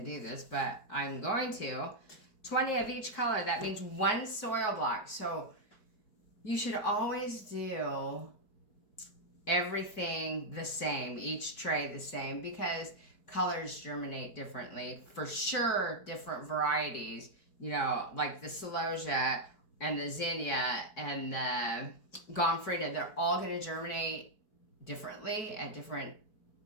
do this, but I'm going to. 20 of each color. That means one soil block. So you should always do everything the same. Each tray the same. Because colors germinate differently. For sure, different varieties, like the Celosia and the Zinnia and the Gomfrida, they're all going to germinate differently at different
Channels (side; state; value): right; late; 4.6 ms